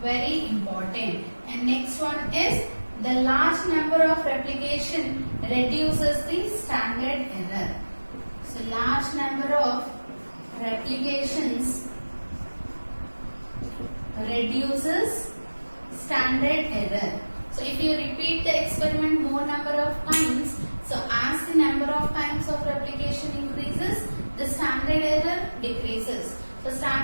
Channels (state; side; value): inverted; both; correlation -1.00